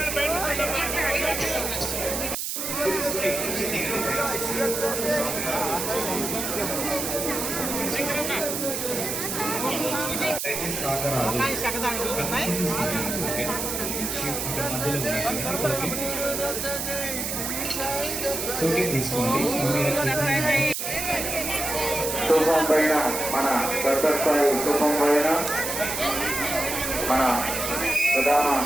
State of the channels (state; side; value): noise; right; hiss, 3 dB below the sound